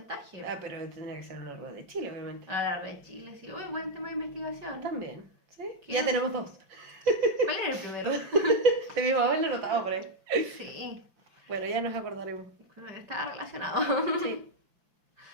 Ah, pero tendría que ser a lo largo de Chile, obviamente. A lo largo de Chile, sí. Uy, buen tema de investigación. También, ¿sí? ¿Qué? Ya tenemos 2. ¿Cuál era el primero? De mi mamá lo notaba por ahí. Sí. Bueno, ya nos acordaremos. Estaba relacionado. Sí.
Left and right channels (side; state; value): left; late; 5.6 ms